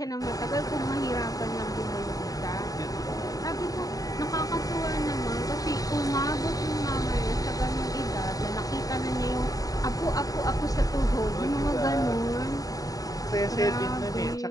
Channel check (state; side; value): late; right; 0.18 ms